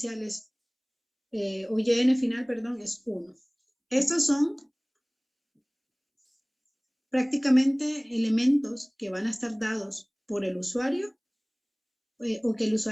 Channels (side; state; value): both; identical; correlation 1.00